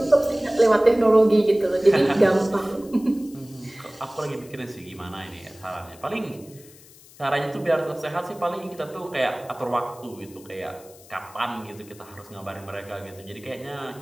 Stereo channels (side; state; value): left; noise; hiss, 23 dB below the sound